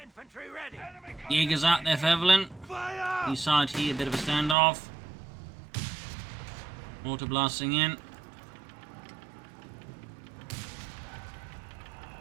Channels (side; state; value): left; drops out; at 4.5 s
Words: infantry ready. Jägers out there for Evelynn. Fire! East side here, a bit of a standoff. Mortar blasting in.